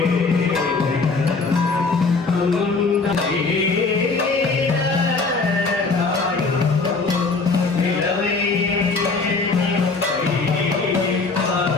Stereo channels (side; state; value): right; quieter; 4.1 dB